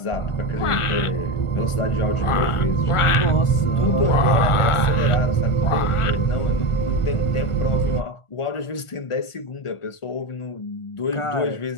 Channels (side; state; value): right; late; 1.4 ms